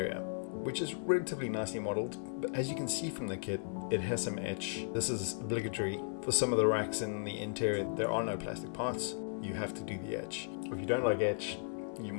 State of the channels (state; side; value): silent; right; 54 dB below the other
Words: which is relatively nicely modeled. But as you can see from the kit, it has some etch. This is obligatory. For some of the racks in the interior, there are no plastic parts. You have to do the etch. If you don't like etch, you